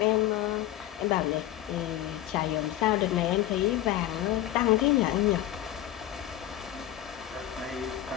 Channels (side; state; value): right; quieter; 13.4 dB